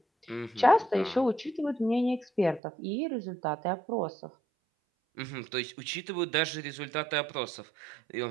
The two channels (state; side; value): drops out; left; at 2.6 s